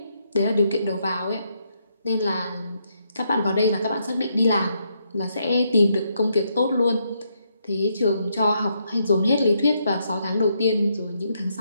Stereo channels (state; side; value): inverted; both; correlation -0.77